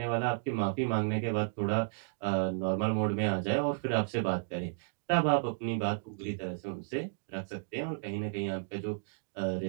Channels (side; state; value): left; silent; digital silence